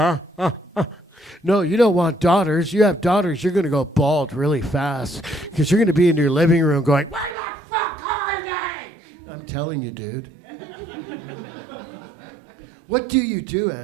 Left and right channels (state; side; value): drops out; left; at 7.4 s